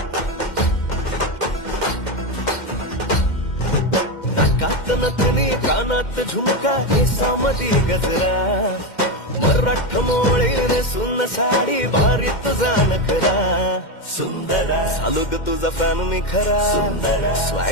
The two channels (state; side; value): late; right; 2.1 ms